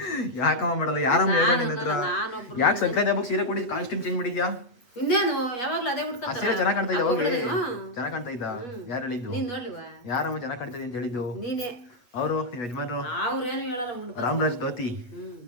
ಯಾಕಮ್ಮ ಮಾಡಲ್ಲ? ಯಾರಮ್ಮ ಹೇಗ ನಿನ್ನ ಹತ್ರ? ಯಾಕೆ ಸಂಕ್ರಾಂತಿ ಹಬ್ಬಕ್ಕೆ ಸೀರೆ ಕೊಡಿ ಕಾಸ್ಟ್ಯೂಮ್ ಚೇಂಜ್ ಮಾಡಿದ್ಯಾ? ಇನ್ನೇನು ಯಾವಾಗ್ಲೂ ಅದೇ ಆ ಸೀರೆ ಚೆನ್ನಾಗಿ ಕಾಣ್ತಾ ಇದ್ದ. ಹೋಗಿ ಚೆನ್ನಾಗಿ ಕಾಣ್ತಾ ಇದ್ದ. ಯಾರು ಹೇಳಿದ್ದು? ನೀನ್ ನೋಡ್ಲಿವಾ? ಯಾರಮ್ಮ ಚೆನ್ನಾಗಿ ಕಾಣ್ತಾ ಅಂತ ಹೇಳಿದ್ದು? ನೀನೇ. ಅವರು ನಿಮ್ಮ ಯಜಮಾನ್ರು ಅವ್ರೇನು ಹೇಳಲ್ಲ. ರಾಮರಾಜ್ ಧೋತಿ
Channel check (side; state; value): right; late; 8.4 ms